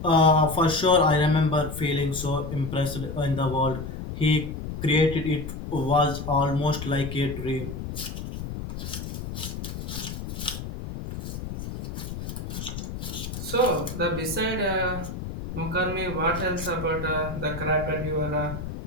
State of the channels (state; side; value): noise; left; rumble, 7 dB below the sound